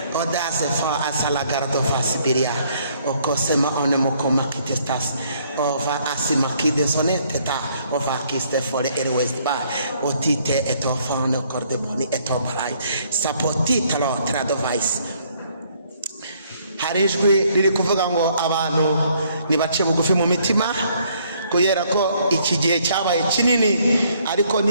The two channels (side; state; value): both; inverted; correlation -0.66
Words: odaze fa asala gardo fa sibiria okosema onemokoma kitestas ova asima kidesoneteta ova kiste fore erwest ba otite etofa no cordeboni etobarai sapotita lo tradovais. Hari ijwi riri kuvuga ngo abantu nibace bugufi mu mitima, kubera ko iki gihe cyabaye kinini ariko